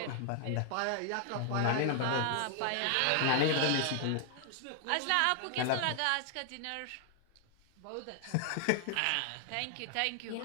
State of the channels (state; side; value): different; both; correlation 0.00